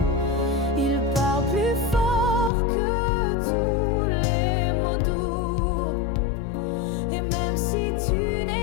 il parle plus fort que tous les mots doux. Et même si tu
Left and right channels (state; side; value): drops out; right; at 2.5 s